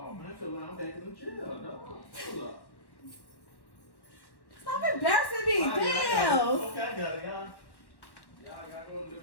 man, I feel like I'm back in the jail, dog. Hold up. Stop embarrassing me. I got it. Damn. Okay, I got it, y'all. Y'all got to go live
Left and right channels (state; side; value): late; right; 1.1 ms